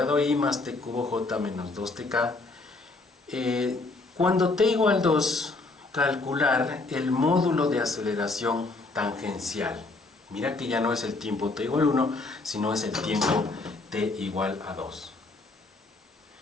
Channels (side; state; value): right; quieter; 3.4 dB